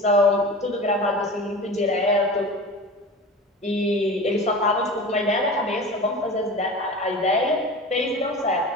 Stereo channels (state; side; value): normal; both; correlation 0.33